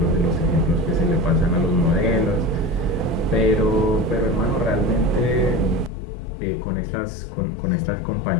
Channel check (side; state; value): right; drops out; at 5.9 s